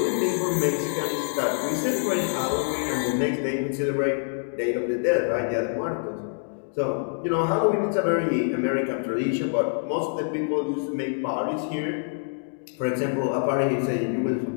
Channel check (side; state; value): right; silent; digital silence